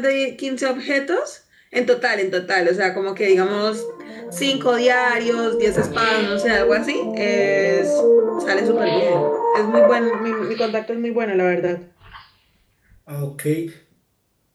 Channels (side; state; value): both; identical; correlation 1.00